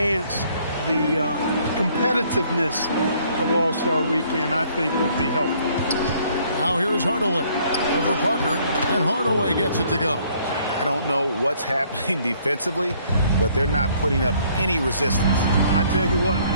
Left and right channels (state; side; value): inverted; both; correlation -0.62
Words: the competitiveness of All-Star Weekend, I think, would be helpful. Now here's Hardaway over Parker, and Hardaway gets it to go. I don't know what's happening defensively, but they're not putting up any resistance. I tell you what,